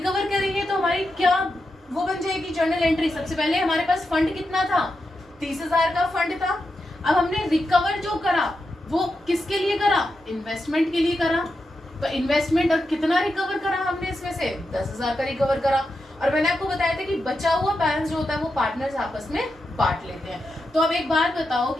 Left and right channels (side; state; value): both; normal; correlation 0.88